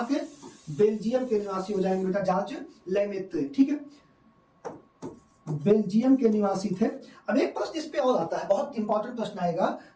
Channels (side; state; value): both; identical; correlation 1.00